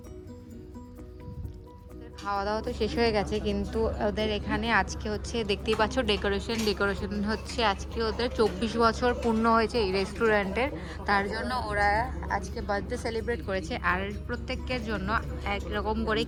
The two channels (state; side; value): identical; both; correlation 1.00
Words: খাওয়া দাওয়া তো শেষ হয়ে গেছে, কিন্তু ওদের এখানে আজকে হচ্ছে দেখতেই পাচ্ছ ডেকোরেশন হচ্ছে। আজকে ওদের 24 বছর পূর্ণ হয়েছে এই রেস্টুরেন্টের, তার জন্য ওরা আজকে বার্থডে সেলিব্রেট করেছে। আর প্রত্যেকের জন্য একরকম করে